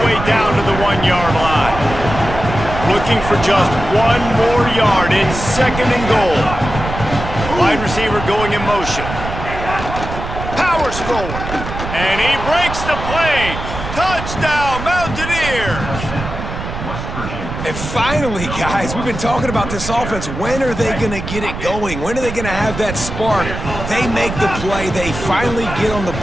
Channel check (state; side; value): noise; right; rumble, 7 dB below the sound